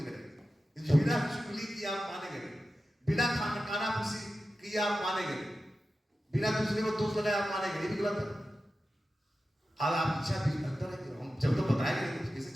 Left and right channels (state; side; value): normal; both; correlation 0.93